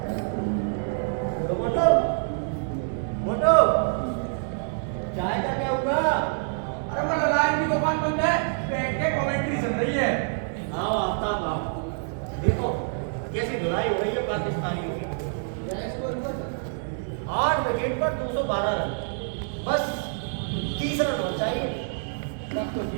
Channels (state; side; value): silent; left; digital silence